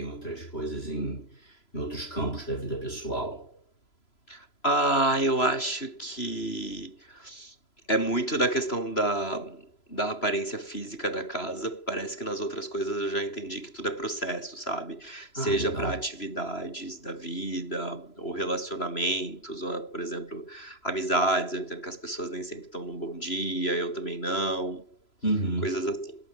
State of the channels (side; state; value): right; late; 3.0 ms